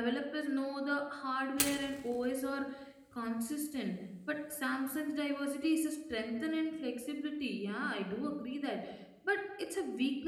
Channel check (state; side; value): identical; both; correlation 1.00